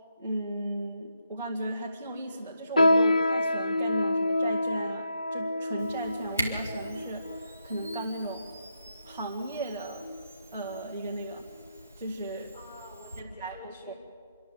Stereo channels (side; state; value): both; inverted; correlation -0.83